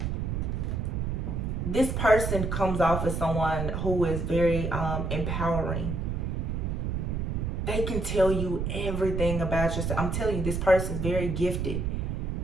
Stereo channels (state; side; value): noise; right; rumble, 1 dB below the sound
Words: comes off as someone who is very empowering. They can tell you everything about yourself. I'm telling you, this person is very gifted.